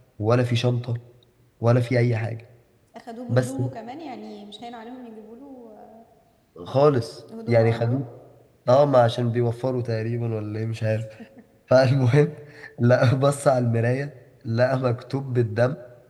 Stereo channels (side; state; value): both; identical; correlation 1.00